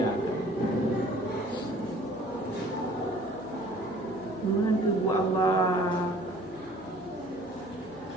Mana buat Allah.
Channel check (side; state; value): left; noise; hum, 24 dB below the sound